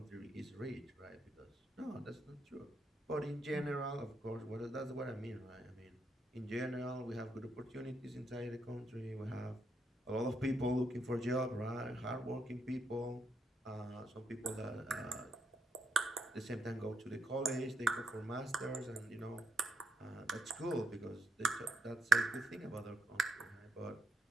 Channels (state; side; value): normal; both; correlation 0.80